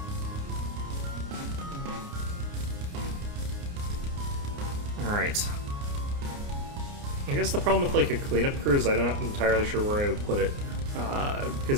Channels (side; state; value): left; late; 29 ms